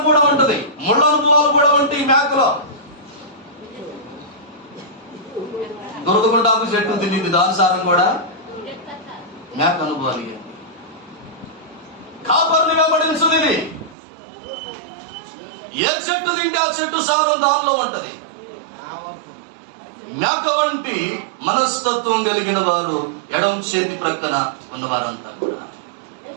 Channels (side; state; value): left; drops out; at 14.0 s